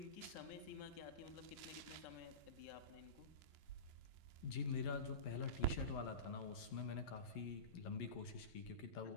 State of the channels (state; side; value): late; right; 11 ms